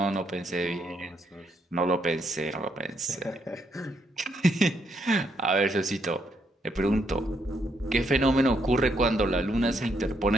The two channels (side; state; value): both; normal; correlation 0.75